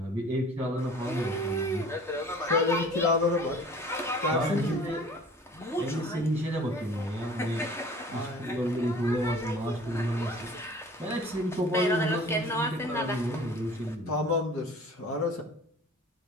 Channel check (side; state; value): both; normal; correlation 0.47